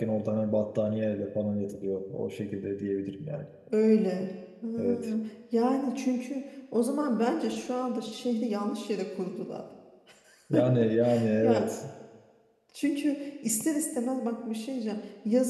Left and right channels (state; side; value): identical; both; correlation 1.00